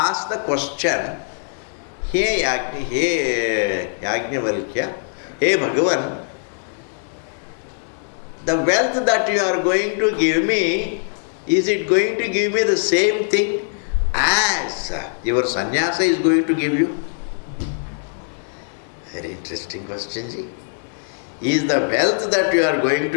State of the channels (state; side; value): silent; right; 64 dB below the other